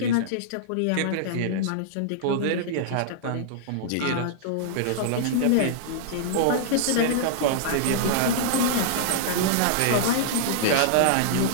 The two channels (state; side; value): different; both; correlation -0.01